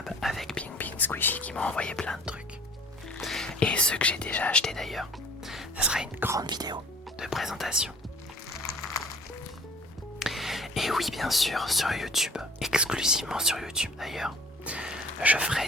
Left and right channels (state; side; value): normal; both; correlation 0.50